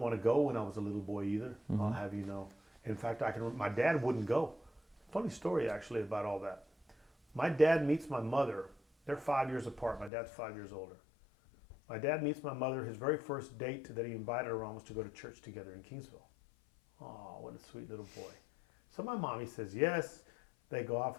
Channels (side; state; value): right; drops out; at 10.1 s